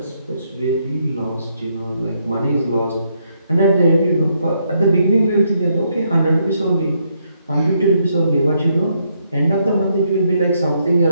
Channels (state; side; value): inverted; both; correlation -0.75